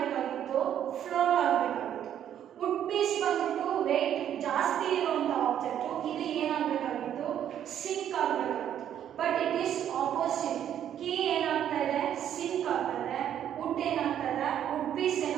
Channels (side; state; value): left; quieter; 10.1 dB